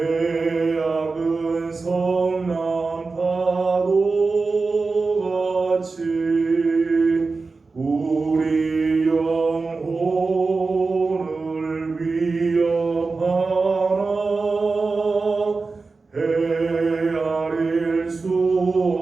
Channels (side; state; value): left; quieter; 4.0 dB